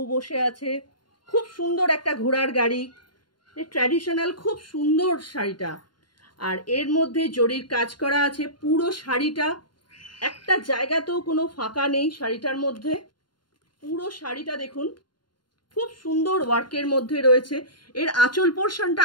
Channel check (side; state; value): right; late; 0.71 ms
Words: বসে আছে, খুব সুন্দর একটা ঘোড়ার গাড়ি, ট্র্যাডিশনাল, খুব সুন্দর শাড়িটা। আর এর মধ্যে জরির কাজ করা আছে পুরো শাড়িটা, একটা জায়গাতেও কোনো ফাঁকা নেই শাড়িটার মধ্যে। পুরো শাড়িটা দেখুন খুব সুন্দর ওয়ার্কের মধ্যে রয়েছে। এর আঁচল পোর্শনটা